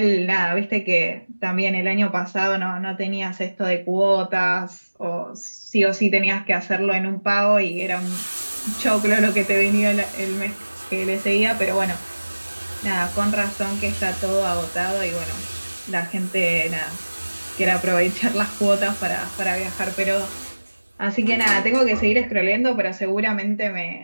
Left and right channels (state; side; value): inverted; both; correlation -1.00